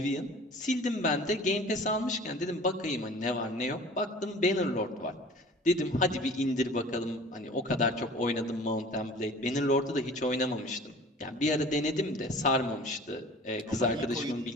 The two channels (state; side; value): normal; both; correlation 0.45